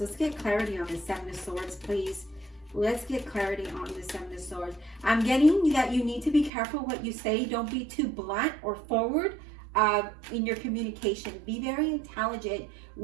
Let's get clarity on the Seven of Swords, please. Let's get clarity on the Seven of Swords. I'm getting that you need to be careful what you say. Don't be too blunt or forward in your communication. Be very intelligent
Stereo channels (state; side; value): drops out; left; at 6.5 s